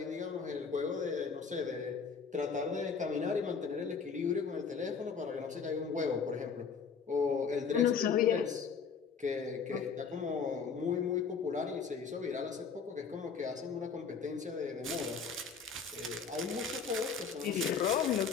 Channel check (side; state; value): right; quieter; 5.9 dB